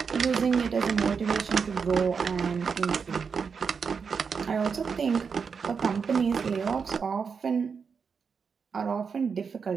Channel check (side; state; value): left; quieter; 5.8 dB